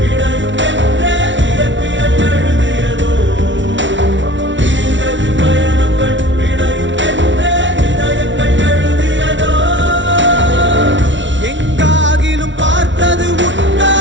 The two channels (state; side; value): late; left; 0.55 ms